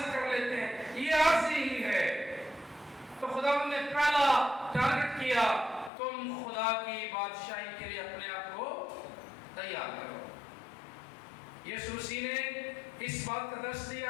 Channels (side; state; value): right; drops out; at 5.9 s